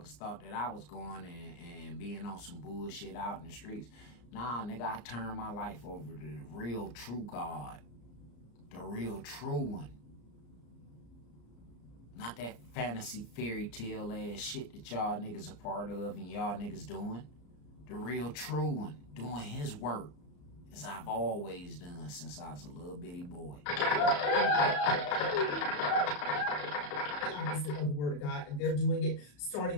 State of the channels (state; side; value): late; right; 34 ms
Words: thought that I was going and being on some bullshit out in the streets. Nah, nigga, I turned my life over to the real true God. The real true one. Not that fantasy fairy tale ass shit that y'all niggas are part of and y'all niggas doing. The real true one, doing his work. As I've always done since I was a little bitty boy. Opposite of the word of God, and they're doing it